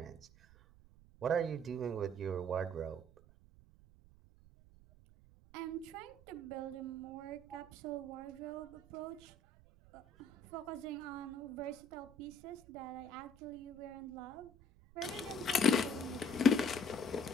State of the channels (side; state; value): right; noise; rumble, 23 dB below the sound